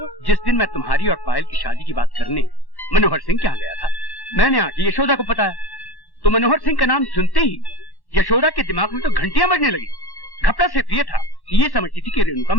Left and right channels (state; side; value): late; right; 1.1 ms